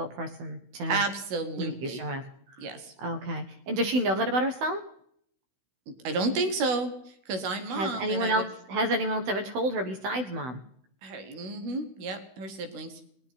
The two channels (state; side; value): late; left; 16 ms